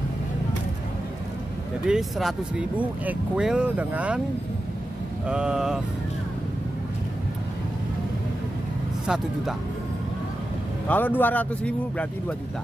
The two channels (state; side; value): normal; both; correlation 0.91